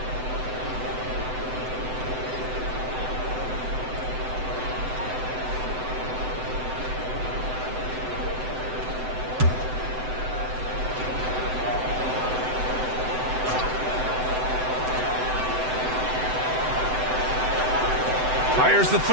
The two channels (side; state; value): left; late; 7.9 ms